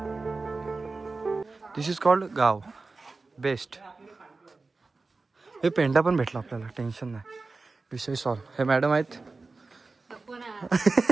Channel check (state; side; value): quieter; left; 3.8 dB